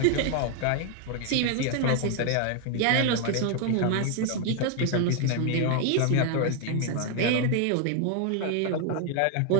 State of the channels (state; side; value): different; both; correlation 0.00